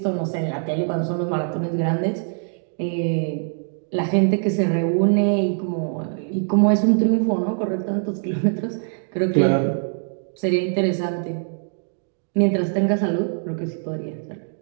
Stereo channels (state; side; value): silent; left; digital silence